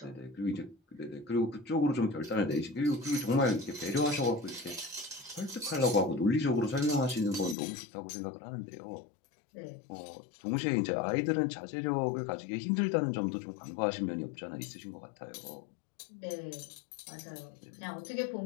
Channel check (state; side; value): drops out; right; at 7.6 s